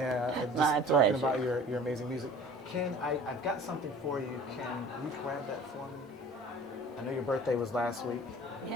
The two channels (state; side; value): normal; both; correlation 0.45